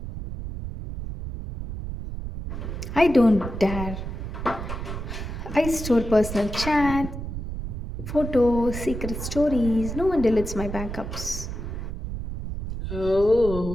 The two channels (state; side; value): noise; right; rumble, 7 dB below the sound